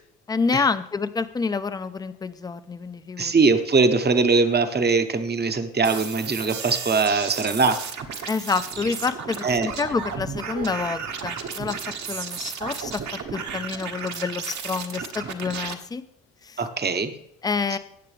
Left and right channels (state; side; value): normal; both; correlation 0.35